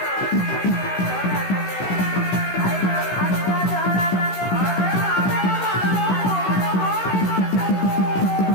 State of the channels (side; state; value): right; late; 16 ms